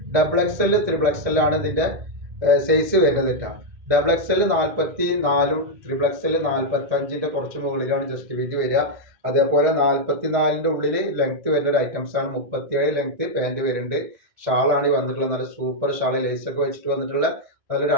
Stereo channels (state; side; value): late; left; 1.7 ms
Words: Double X L triple X L ആണ് ഇതിന്റെ സൈസ് വരുന്നത് കേട്ടോ. Double X L 44 triple X L 45 കുറച്ച് മുകളിലാണ് ജസ്റ്റ് വീതി വരിക. അതേപോലെ 44 ഉള്ളിൽ ലെങ്ത് വരുന്ന ഒരു ഐറ്റംസ് ആണ്. 37 ലെങ്ത് പാൻറ് വരുന്നുണ്ട്. ഷാളാണ് ഈ വന്നിട്ടുള്ളത്. നല്ല സൂപ്പർ ഷാള് ലേസ് ഒക്കെ വെച്ചിട്ട് വന്നിട്ടുള്ള നല്ലൊരു